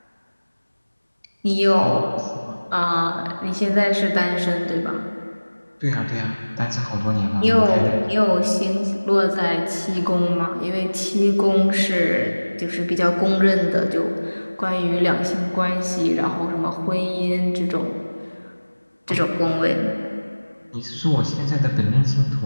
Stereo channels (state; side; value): inverted; both; correlation -1.00